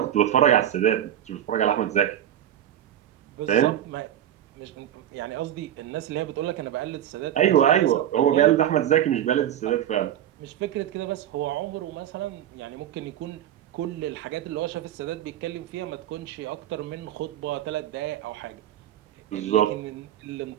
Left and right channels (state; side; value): quieter; left; 11.3 dB